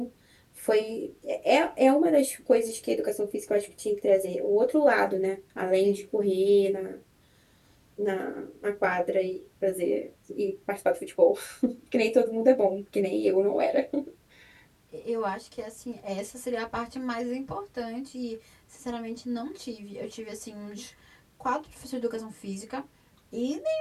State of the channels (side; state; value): both; identical; correlation 1.00